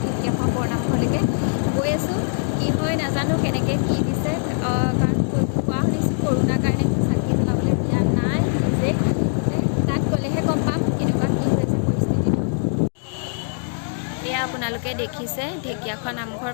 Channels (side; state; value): right; silent; digital silence